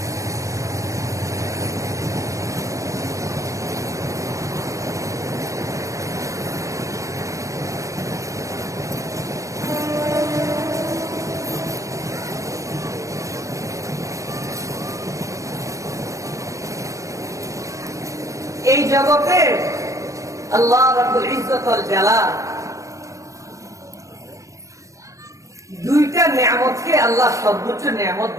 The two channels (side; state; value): left; late; 0.15 ms